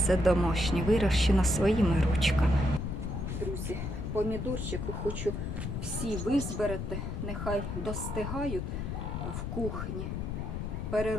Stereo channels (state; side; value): noise; left; rumble, 4 dB below the sound